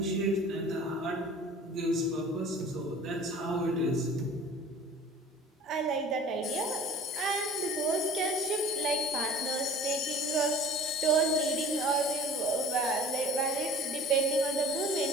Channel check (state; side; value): normal; both; correlation 0.45